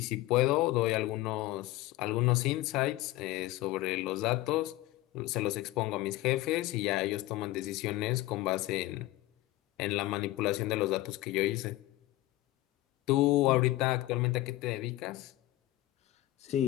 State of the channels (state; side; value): quieter; right; 17.1 dB